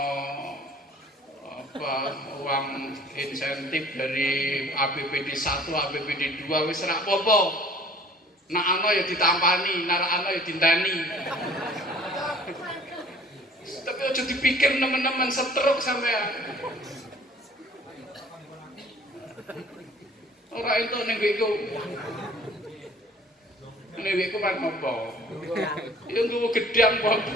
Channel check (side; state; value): both; normal; correlation 0.52